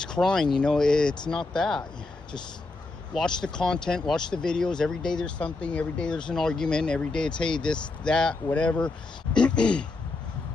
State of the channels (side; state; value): right; quieter; 3.4 dB